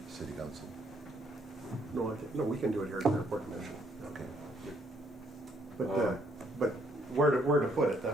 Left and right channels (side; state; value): left; noise; rumble, 29 dB below the sound